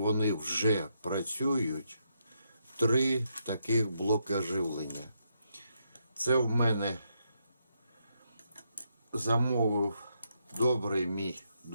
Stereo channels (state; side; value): inverted; both; correlation -0.80